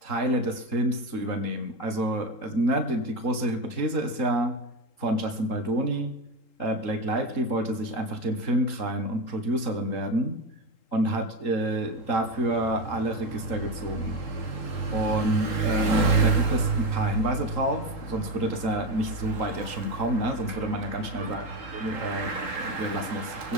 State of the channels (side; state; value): right; late; 3.8 ms